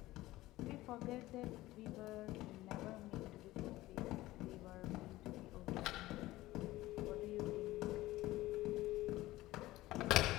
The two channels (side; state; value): right; quieter; 17.2 dB